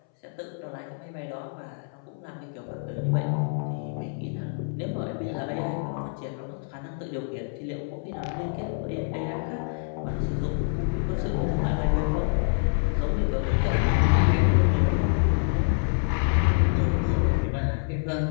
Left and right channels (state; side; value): silent; right; 60 dB below the other